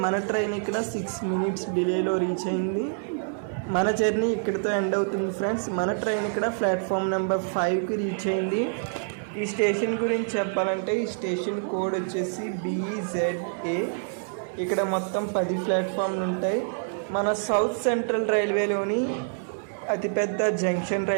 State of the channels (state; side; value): silent; left; 60 dB below the other